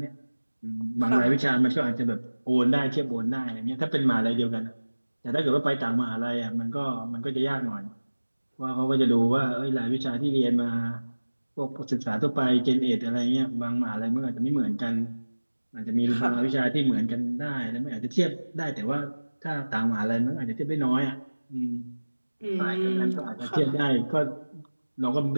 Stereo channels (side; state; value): both; inverted; correlation -1.00